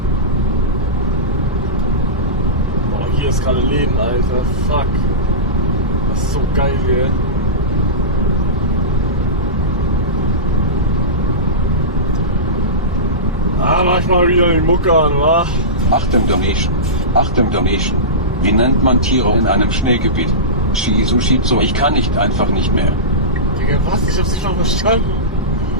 Boah, hier ist gerade Leben, Alter. Fuck. Das ist so geil hier. Mach ich mal wieder die Mucke an, wa? Achtung Donation. Achtung Donation. Wie nennt man Tiere in einem Schneegebiet? Shizu, ich kann einfach nicht mehr. Digga, was? Ich hab's nicht mal verstanden.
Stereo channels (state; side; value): normal; both; correlation -0.18